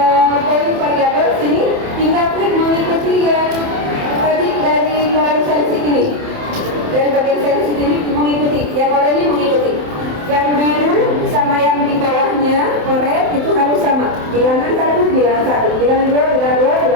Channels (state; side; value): late; left; 27 ms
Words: poin variabel sini tinggal klik mengikuti yang tadi dari kolom sensi ini. Dari bagian sensi ini mengikuti, yang oranye mengikuti. Yang biru sama yang di bawahnya orange itu harus sama. Bilangan 1, bilangan 1, bilangan 2, bilangan 2,